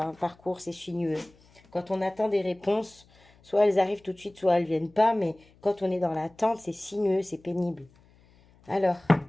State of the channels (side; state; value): left; noise; hum, 29 dB below the sound